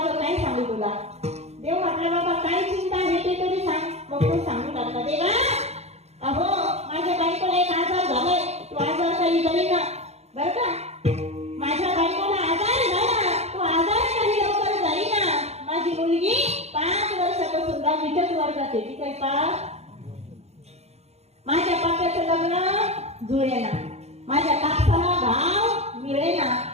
काय सांगू तुला? देव म्हटलं बाबा काय चिंता आहे ते तरी सांग. मग तो सांगू लागला देवा अहो माझ्या बायकोला एक आजार झालाय, तो आजार काही जाईना बरं का. माझ्या बायकोला आजार झाला, तो आजार काही लवकर जाईना. माझी मुलगी 5 वर्षापासून 10वीच्याच वर्गात आहे. ती काही पास. माझ्या पाप्याचं लग्न जुळेना, माझ्या कापसाला भाव मिळेना.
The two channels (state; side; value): late; left; 0.31 ms